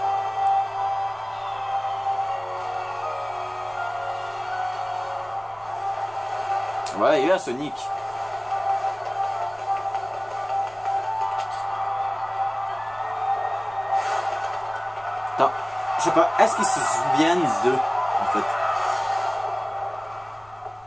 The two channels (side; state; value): left; noise; rumble, 27 dB below the sound